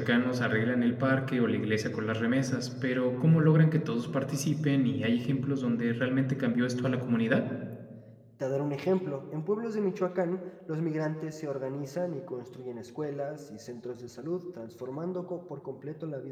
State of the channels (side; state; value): both; identical; correlation 1.00